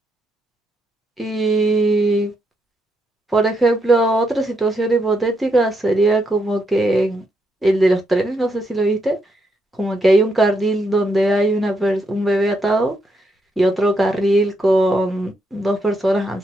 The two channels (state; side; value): normal; both; correlation 0.79